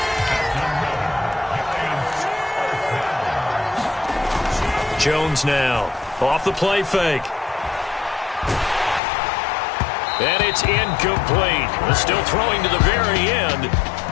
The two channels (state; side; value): drops out; right; at 9.0 s